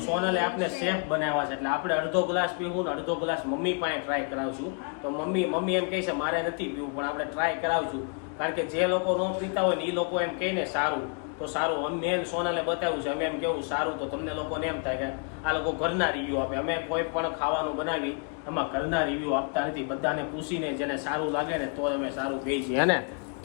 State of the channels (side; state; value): right; quieter; 38.5 dB